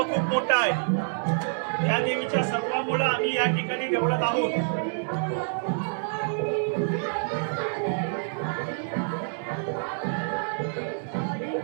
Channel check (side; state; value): left; silent; digital silence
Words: मोठं आहे. या देवीच्या सत्वामुळे आम्ही या ठिकाणी देवळात आहोत.